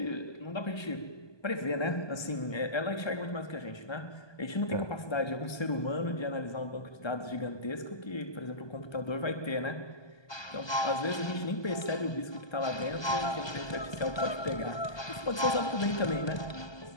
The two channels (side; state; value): right; late; 1.2 ms